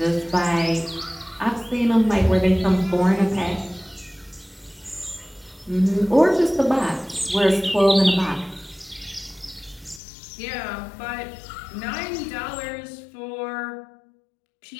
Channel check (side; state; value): right; drops out; at 10.0 s